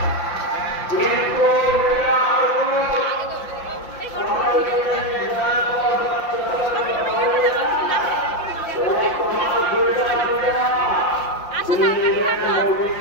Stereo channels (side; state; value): right; late; 5.8 ms